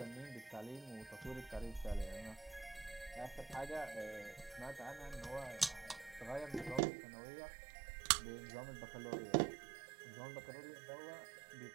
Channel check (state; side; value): drops out; left; at 6.8 s